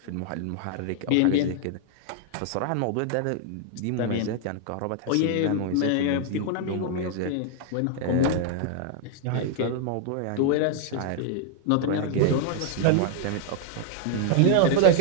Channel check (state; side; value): different; both; correlation 0.00